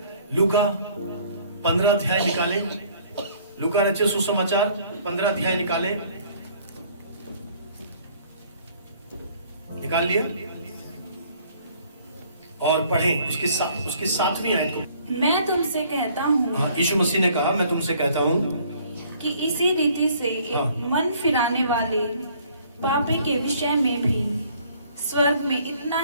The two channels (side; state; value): both; inverted; correlation -0.58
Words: लूका 15 अध्याय निकाले, लूका रचित सुसमाचार 15 अध्याय निकाले, निकाल लिया और पढ़ें उसकी 7वीं आयत। मैं तुमसे कहता हूँ, हाँ, यीशु मसीह ने कहा, मैं तुमसे कहता हूँ कि इसी रीति से मन फिराने वाले पापी के विषय में भी स्वर्ग में इतना